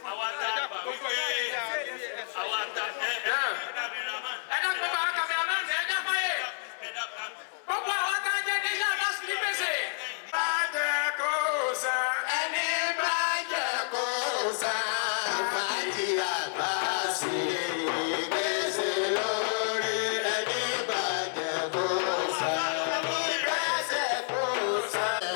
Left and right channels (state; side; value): silent; right; digital silence